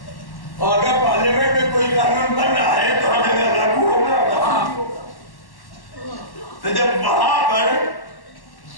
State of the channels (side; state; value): right; late; 1.1 ms